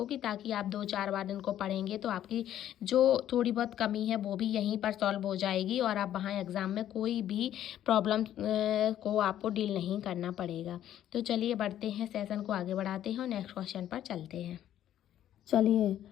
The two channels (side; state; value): right; quieter; 11.5 dB